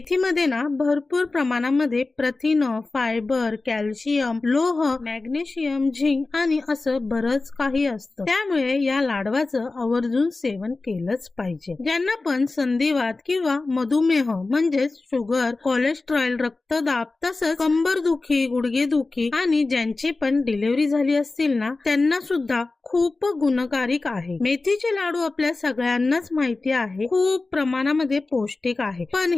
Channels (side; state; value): right; quieter; 3.5 dB